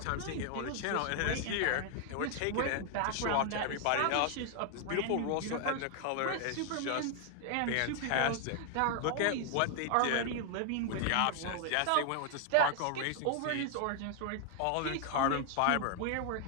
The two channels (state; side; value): different; both; correlation 0.00